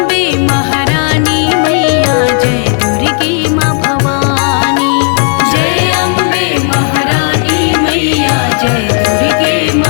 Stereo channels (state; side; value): quieter; right; 39.6 dB